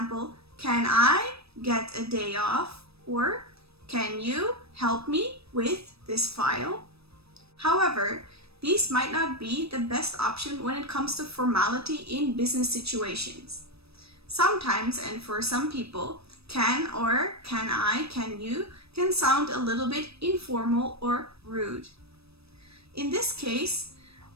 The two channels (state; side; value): late; left; 0.78 ms